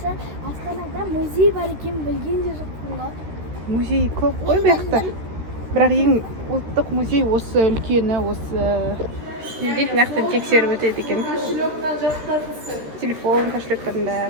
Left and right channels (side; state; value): left; late; 13 ms